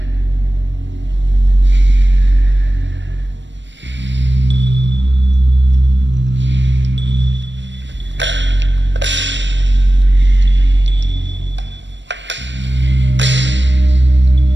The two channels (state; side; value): late; left; 0.53 ms